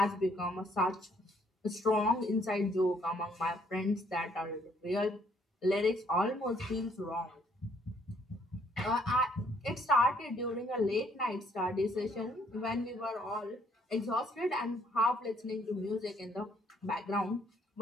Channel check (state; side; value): normal; both; correlation 0.66